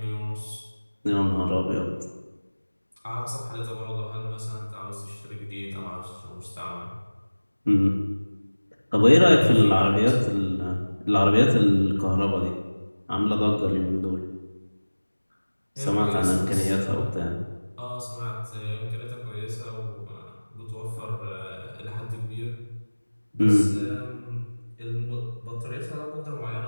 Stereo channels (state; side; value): inverted; both; correlation -1.00